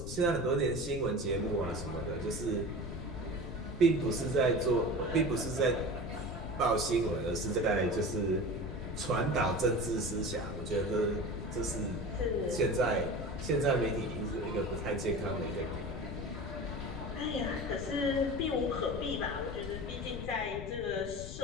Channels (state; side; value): noise; left; rumble, 8 dB below the sound